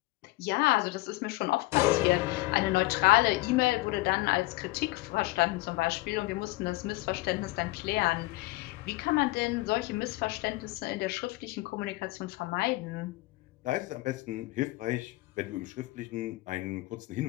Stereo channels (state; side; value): quieter; right; 20.4 dB